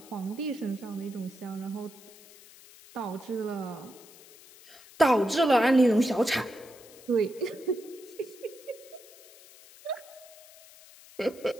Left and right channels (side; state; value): left; noise; hiss, 21 dB below the sound